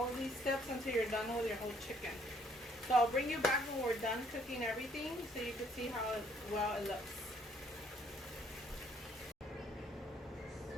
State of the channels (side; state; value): both; normal; correlation 0.65